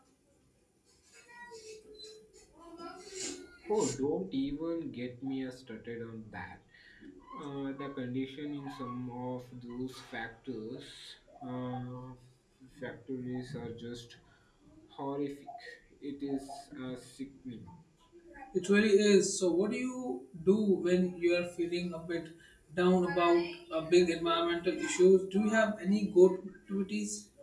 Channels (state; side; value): identical; both; correlation 1.00